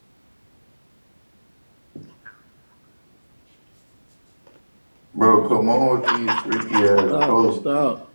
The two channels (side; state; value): both; inverted; correlation -1.00